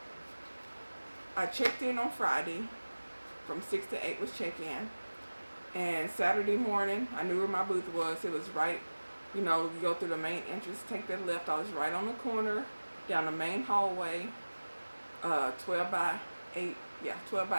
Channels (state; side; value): inverted; both; correlation -1.00